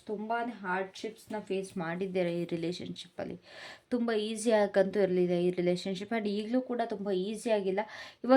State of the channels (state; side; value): identical; both; correlation 1.00